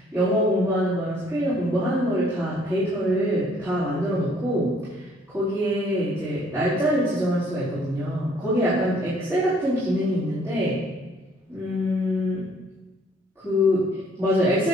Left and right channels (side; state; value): both; normal; correlation 0.61